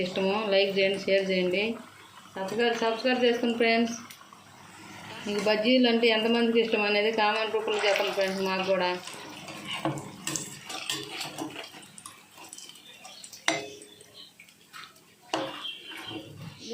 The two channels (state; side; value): identical; both; correlation 1.00